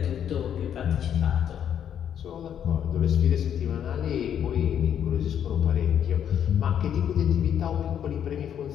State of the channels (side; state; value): right; quieter; 9.2 dB